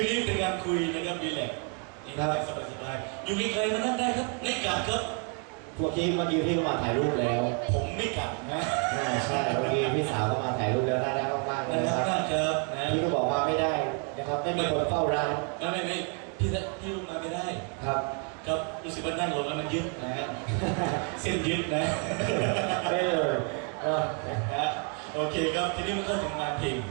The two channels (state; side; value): quieter; left; 39.5 dB